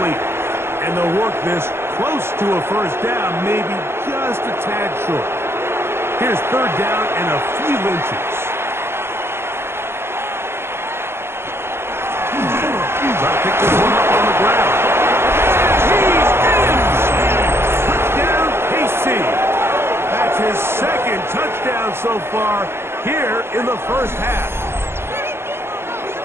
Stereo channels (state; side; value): late; left; 0.12 ms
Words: And they'll work this close to a first down, maybe just a tad short. Here's third down and a few inches. Try to pick this one up on the ground. He's in! Touchdown, KC. That's his second touchdown so far here in the first half.